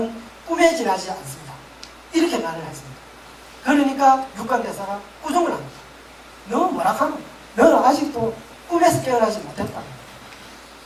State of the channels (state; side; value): identical; both; correlation 1.00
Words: 꿈에 지나지 않습니다. 이렇게 말을 했습니다. 그러니까 육관대사가 꾸중을 합니다. 너 뭐라 하노? 너는 아직도 꿈에서 깨어나지 못했다.